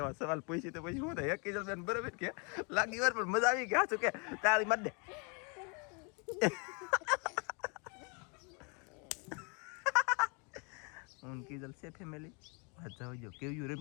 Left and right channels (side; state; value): right; quieter; 34.3 dB